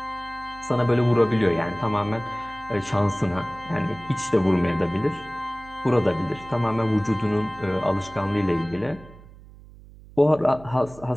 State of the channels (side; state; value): right; noise; hum, 20 dB below the sound